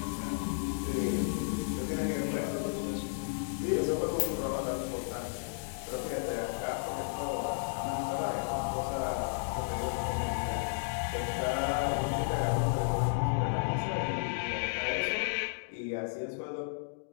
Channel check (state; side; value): silent; right; digital silence